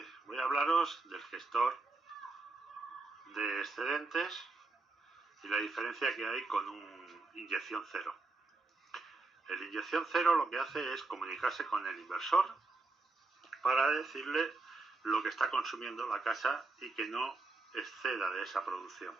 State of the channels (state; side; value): quieter; left; 3.6 dB